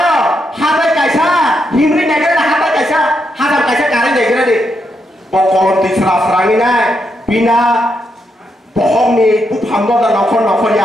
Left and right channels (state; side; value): normal; both; correlation 0.81